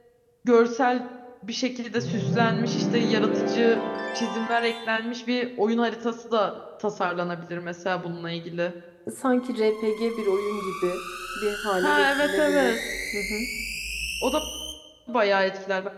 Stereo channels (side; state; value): both; identical; correlation 1.00